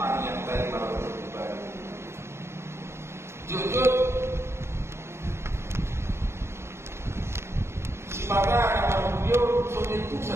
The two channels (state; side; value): late; left; 0.13 ms